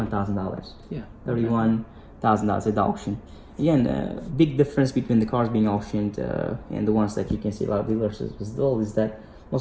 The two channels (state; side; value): identical; both; correlation 1.00